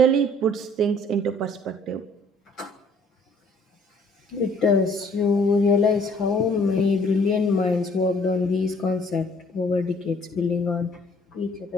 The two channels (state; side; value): normal; both; correlation 0.59